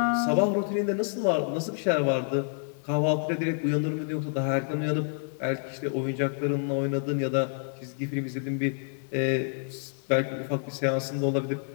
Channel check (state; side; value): silent; right; 59 dB below the other